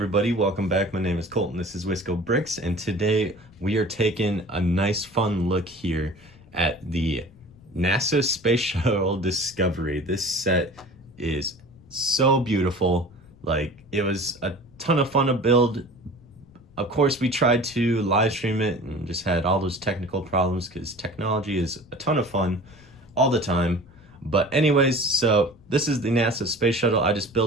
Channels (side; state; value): left; noise; rumble, 25 dB below the sound